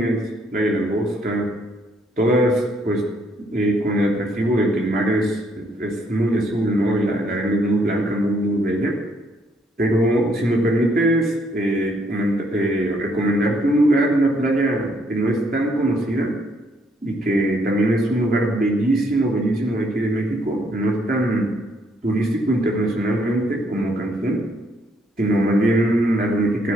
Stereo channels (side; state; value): both; normal; correlation 0.70